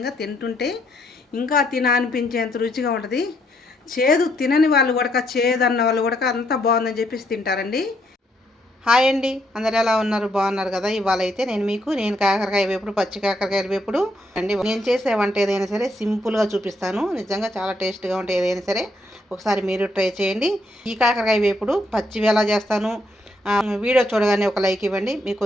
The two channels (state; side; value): normal; both; correlation 0.74